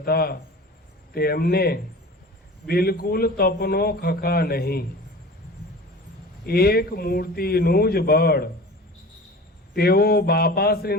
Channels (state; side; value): normal; both; correlation 0.38